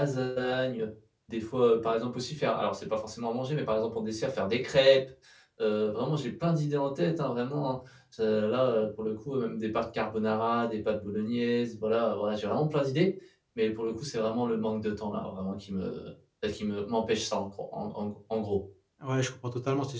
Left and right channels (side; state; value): both; identical; correlation 1.00